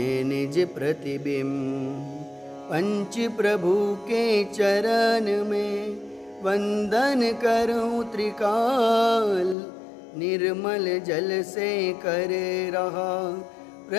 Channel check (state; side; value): drops out; right; at 9.6 s